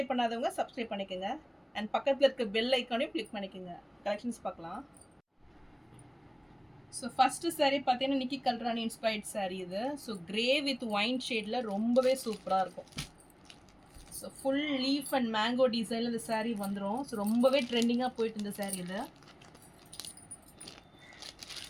பண்ணாதவங்க சப்ஸ்கிரைப் பண்ணிக்கோங்க. அண்ட் பக்கத்தில் இருக்க பெல் ஐக்கானையும் கிளிக் பண்ணிக்கோங்க. கலெக்ஷன்ஸ் பார்க்கலாம். ஸோ ஃபஸ்ட்டு சாரீ பார்த்தீங்கன்னா நிக்கி கல்ராணி இன்ஸ்பைர்ட் சாரீ இது. ஸோ கிரே வித் ஒயின் ஷேடில் ரொம்பவே சூப்பராக இருக்கும். So full leaf and mango டிசைனில் இந்த சாரீ வந்துடும். ஸோ ரொம்பவே ட்ரெண்டிங்காக போயிட்டு இந்த சாரீ இது.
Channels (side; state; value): both; identical; correlation 1.00